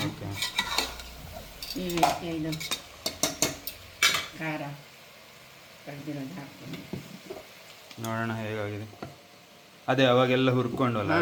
ಈಗ ಇದು ಖಾರ ಕಡ್ದಿರೋದು ಹಾಕ್ತೀನಿ. ನೋಡೋಣ ಹೇಗಾಗಿದೆ. ಅದೇ ಅವಾಗೆಲ್ಲ ಹುರ್ಕೊಂಡಲ್ಲ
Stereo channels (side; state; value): both; identical; correlation 1.00